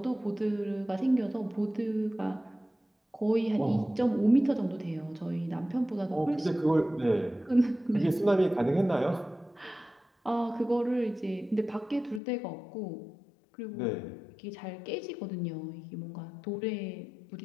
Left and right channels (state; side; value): drops out; right; at 12.2 s